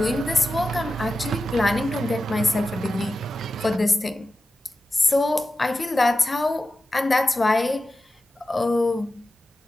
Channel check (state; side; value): normal; both; correlation 0.93